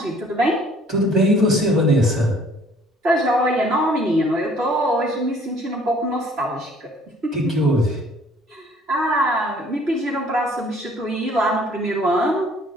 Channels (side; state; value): both; normal; correlation 0.57